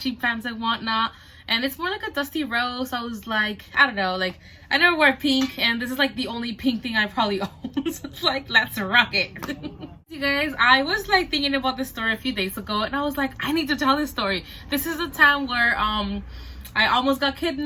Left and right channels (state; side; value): identical; both; correlation 1.00